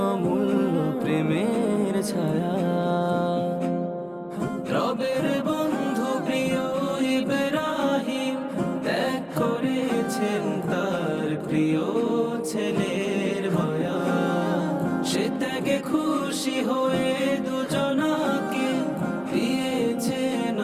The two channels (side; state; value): both; identical; correlation 1.00